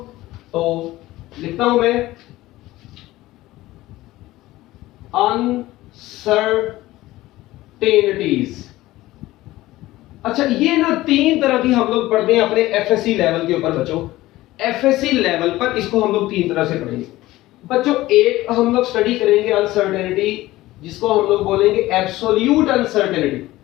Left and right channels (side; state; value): right; quieter; 17.2 dB